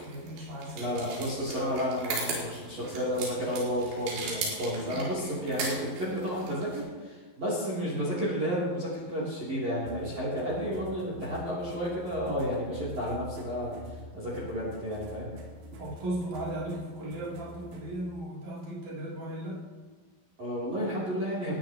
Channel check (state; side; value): late; left; 11 ms